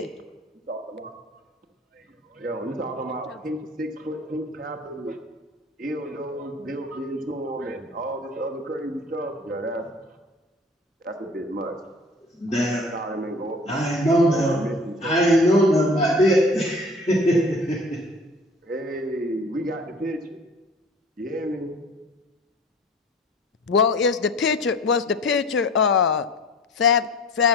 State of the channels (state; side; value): normal; both; correlation 0.44